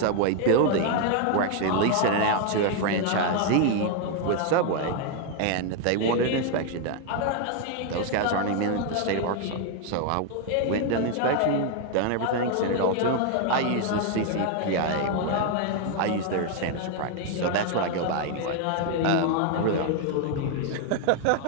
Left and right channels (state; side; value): different; both; correlation 0.01